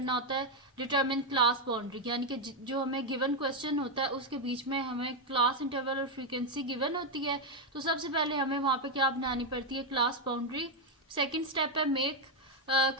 होता है, डिटर्मिन क्लास बाउंड्री, यानी कि जो हमें गिवन क्वेश्चन होता है उसके बीच में हमें क्लास इंटरवल और फ्रीक्वेंसी गिवन होती है। तो सबसे पहले हमें वहां पे क्या बनानी पड़ती है, क्लास बाउंड्री। सेकेंड स्टेप है मेक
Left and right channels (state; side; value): normal; both; correlation 0.03